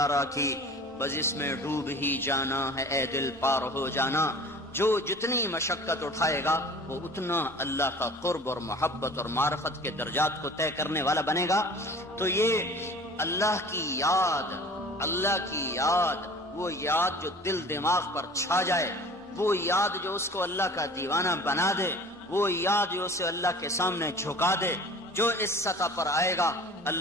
کی، بس اس میں ڈوب ہی جانا ہے اے دل پار ہو جانا. جو جتنی مشقت اٹھائے گا وہ اتنا اللہ کا قرب اور محبت اور معرفت کے درجات کو طے کرنے والا بنے گا. تو یہ اللہ کی یاد، اللہ کی یاد، وہ یاد جو دل دماغ پر چھا جائے، وہ یاد جو اس کو اللہ کا دیوانہ بنا دے، وہ یاد جو اسے اللہ کے سامنے جھکا دے، جو اس سطح پر آئے گا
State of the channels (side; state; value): both; normal; correlation 0.43